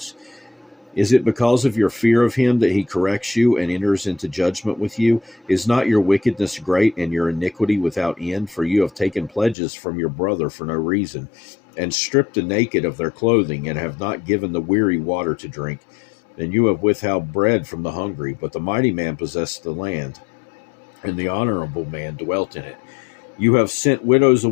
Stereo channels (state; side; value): drops out; right; at 9.6 s